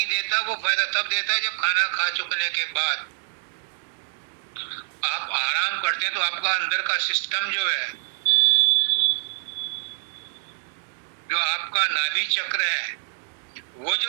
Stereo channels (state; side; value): silent; left; 59 dB below the other